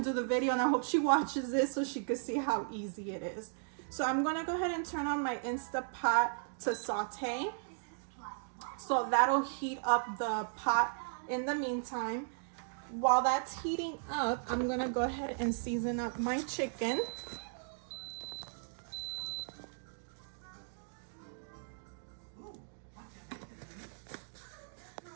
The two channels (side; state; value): left; silent; digital silence